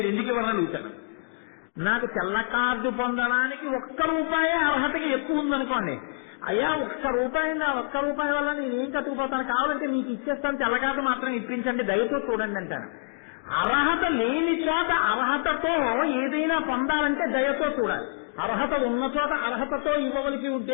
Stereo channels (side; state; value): right; silent; digital silence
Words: ఎందుకు ఇవ్వాలని అడుగుతాను. నాకు తెల్ల కార్డు పొందడానికి ₹1 అర్హతకి ఎక్కువ ఉందనుకోండి, అయ్యా ₹1 నా ₹1 వల్ల నేను ఏం కట్టుకుపోతాను, కావాలంటే మీకు ఇచ్చేస్తాను, తెల్ల కార్డు మాత్రం ఇప్పించండి, దయతో చూడండి అంటాను. అర్హత లేని చోట అర్హతతో ఏదైనా పొందాలంటే దయతో చూడాలి. అర్హత ఉన్న చోట అర్హతతో ఇవ్వవలసి ఉంటే